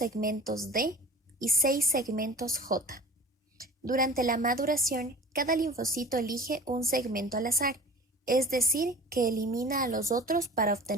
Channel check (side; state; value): both; normal; correlation 0.41